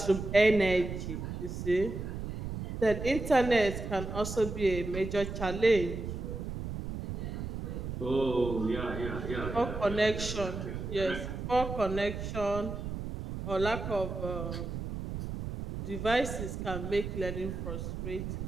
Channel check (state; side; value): noise; right; rumble, 6 dB below the sound